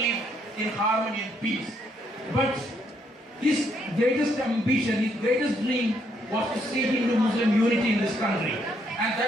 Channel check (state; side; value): normal; both; correlation 0.72